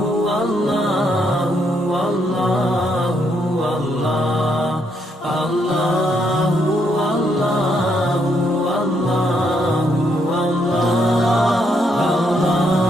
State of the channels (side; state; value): both; normal; correlation 0.75